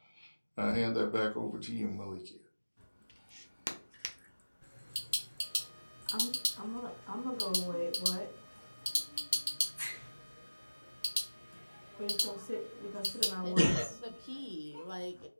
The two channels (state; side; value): inverted; both; correlation -1.00